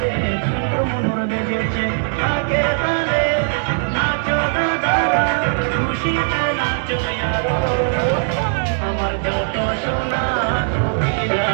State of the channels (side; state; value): left; silent; digital silence